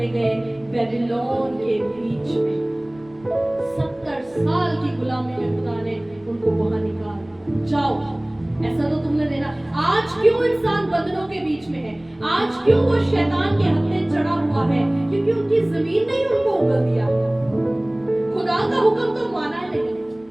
गए? बेबीलोन के बीच में। 70 साल की गुलामी में खुदा ने उनको वहां निकाला। जाओ, ऐसा तो तुमने देना। आज क्यों इंसान बंधनों के बीच में है? आज क्यों वो शैतान के हत्थे चढ़ा हुआ है? क्योंकि उनकी जमीन ने उनको उगल दिया। खुदा का हुक्म तो माना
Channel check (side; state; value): right; noise; rumble, 29 dB below the sound